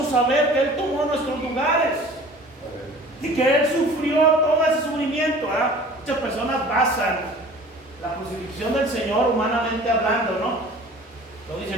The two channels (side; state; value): both; normal; correlation 0.45